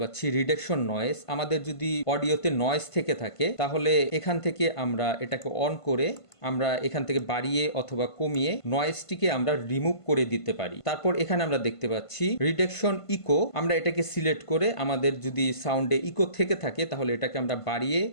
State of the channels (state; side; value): late; right; 1.5 ms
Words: পাচ্ছি রিডাকশন নয়েজ। আমাদের যদি অডিওতে নয়েজ থেকে থাকে তাহলে এখান থেকে আমরা এটাকে অন করে আমরা এখান থেকে বাড়িয়ে অথবা কমিয়ে নয়েজটিকে আমরা রিমুভ করে দিতে পারি। তারপর এখানে আমরা দেখতে পাচ্ছি রিডাকশন ইকো। আমরা এটাকে সিলেক্ট করে আমাদের যদি সাউন্ডে ইকো থেকে থাকে তাহলে এটাকে আমরা বাড়িয়ে